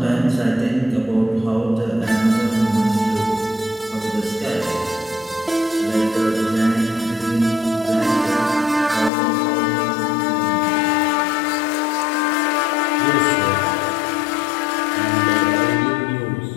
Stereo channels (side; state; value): right; drops out; at 9.1 s